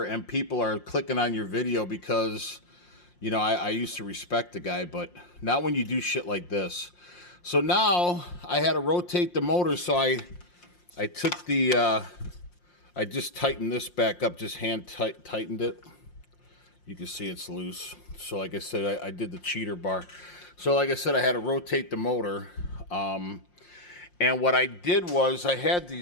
and people are clicking on your video because, I used to respect the guy, but not when you do shit like this. So now I had to rotate the motor, so I took I just tightened this back up, just hand tightened it. You can see it's loose. So like I said, I did the cheater bar. So like I said, I had to rotate the motor. And what I did was I had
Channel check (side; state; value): right; late; 5.7 ms